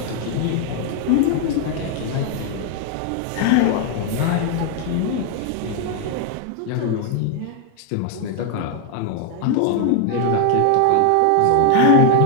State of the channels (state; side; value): different; both; correlation 0.00